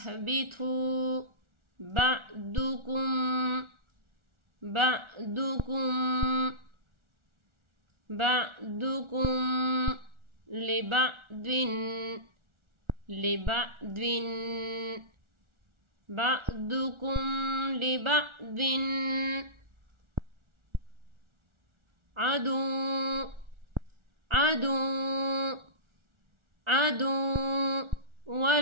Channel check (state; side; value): late; left; 1.4 ms